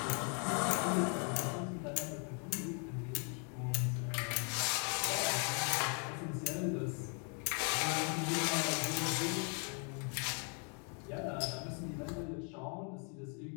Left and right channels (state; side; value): quieter; right; 39.1 dB